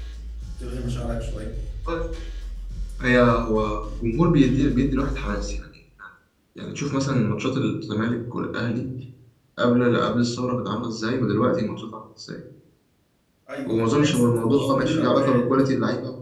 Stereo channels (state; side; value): identical; both; correlation 1.00